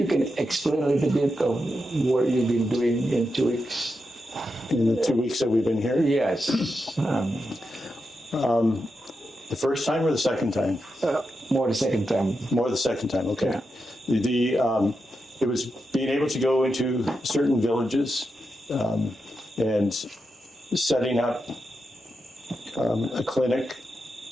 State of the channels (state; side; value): normal; both; correlation 0.87